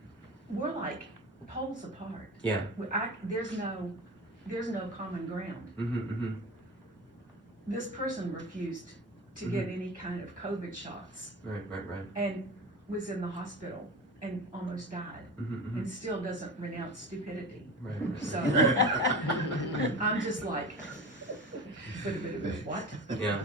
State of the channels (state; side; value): normal; both; correlation 0.31